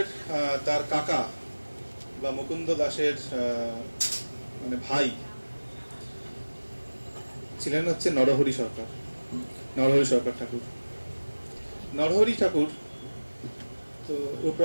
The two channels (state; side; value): inverted; both; correlation -1.00